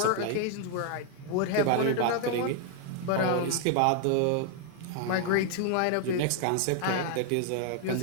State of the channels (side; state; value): both; different; correlation 0.00